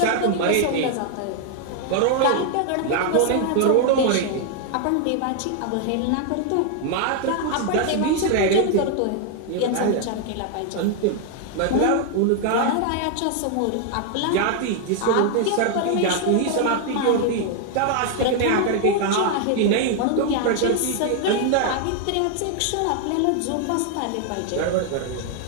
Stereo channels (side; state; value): both; different; correlation 0.00